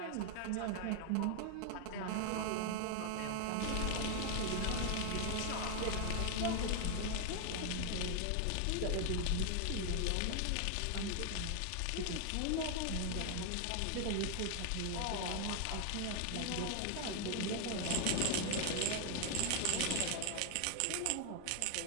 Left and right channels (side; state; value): both; different; correlation 0.00